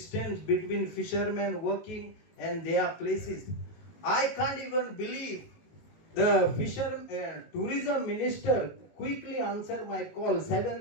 between fishermen working and their places. I can't even believe the tourism minister quickly answered my call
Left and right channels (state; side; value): late; right; 19 ms